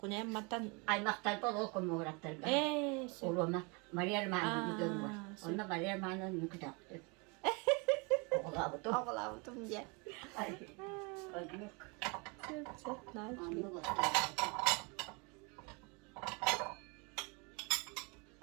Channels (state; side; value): quieter; left; 30.8 dB